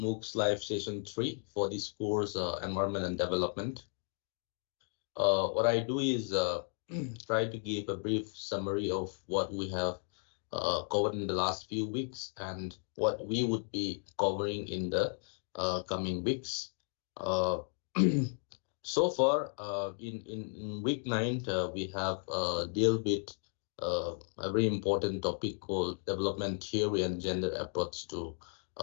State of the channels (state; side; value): silent; right; 55 dB below the other